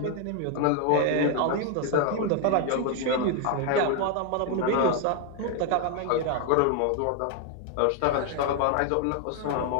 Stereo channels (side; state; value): both; different; correlation 0.01